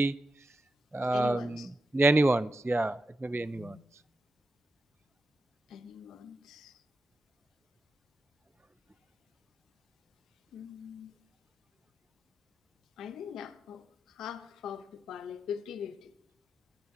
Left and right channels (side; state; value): both; normal; correlation 0.88